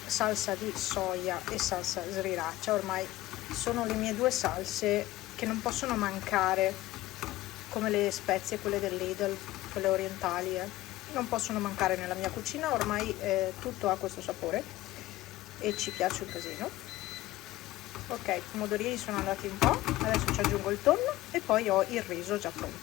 salsa di soia e salsa sriracha. Ormai sono le mie due salse che non possono mancare, come le spezie, quelle del Lidl, quelle orientali, non possono mancare nella mia cucina. Ormai tutto ha questo sapore e ci piace un casino. Ok, i pomodorini sono andati un po', adesso ci aggiungo il tonno e poi ho il riso già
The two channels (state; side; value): quieter; right; 16.8 dB